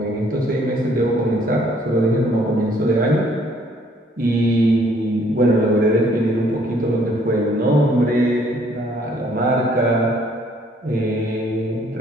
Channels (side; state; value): both; normal; correlation 0.63